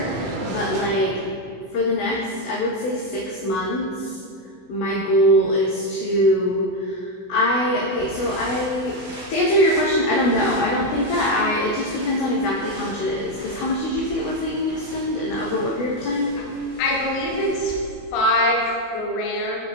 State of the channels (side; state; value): right; late; 16 ms